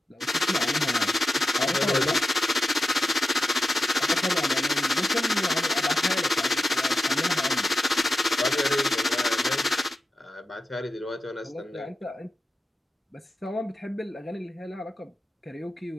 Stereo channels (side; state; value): both; normal; correlation 0.91